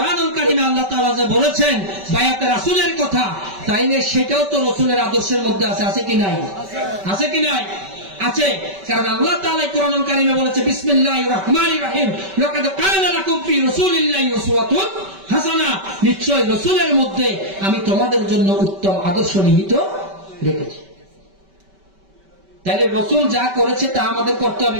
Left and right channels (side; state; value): left; late; 5.2 ms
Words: কারীমে আল্লাহ তাআলা যে বলেছেন বায়াতে রাসূলের কথা, তাইলে সেটাও তো রাসূলের আদর্শের মধ্যে আছে। আছে কি নাই? আছে কি নাই? আছে। কারণ আল্লাহ তাআলা কোরআনুল কারীমে বলেছে বিসমিল্লাহির রহমানির রহিম, লাকাদ কানা লাকুম ফি রাসূলিল্লাহি উসওয়াতুন হাসানা। নিশ্চয় রাসূলের মধ্যে আমি তোমাদের জন্য উত্তম আদর্শ নিহিত রেখেছি। তাহলে রাসূল যা করেছে তা আমাদের করতে হবে